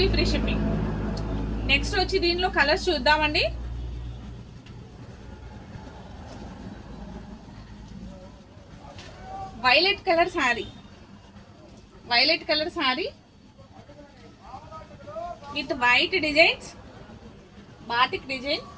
free shipping. నెక్స్ట్ వచ్చి దీనిలో కలర్స్ చూద్దామండి. Violet colour sari. Violet colour sari with white designs. Batik design.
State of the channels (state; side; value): identical; both; correlation 1.00